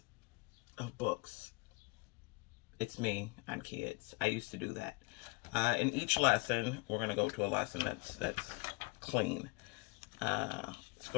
of books. It's me. I'm kids. I used to do that. In each lesson, we're going to go to a lesson that's clean. Let's go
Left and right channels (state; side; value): quieter; right; 26.4 dB